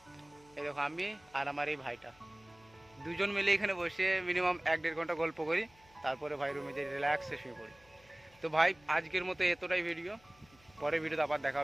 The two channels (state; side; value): noise; left; hum, 28 dB below the sound